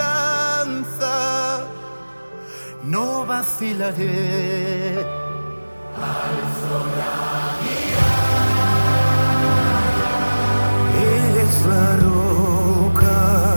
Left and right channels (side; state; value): both; inverted; correlation -1.00